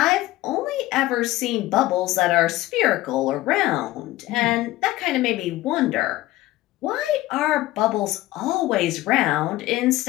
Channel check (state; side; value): quieter; right; 17.0 dB